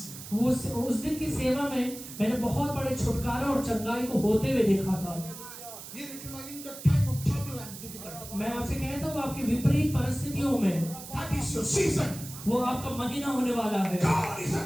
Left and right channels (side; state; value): right; noise; hiss, 13 dB below the sound